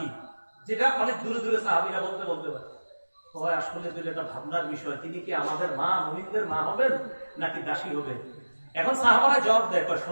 যেটা অনেক দূরে দূরে সাহাবীরা বলতে পারে। হয় আসলে তো এটা ভাবনার বিষয়, তিনি কি আমাদের মা, মুমিনদের মা হবেন নাকি দাসী হবেন? এখন সাহাবারা জবাব দেয়,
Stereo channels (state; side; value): inverted; both; correlation -1.00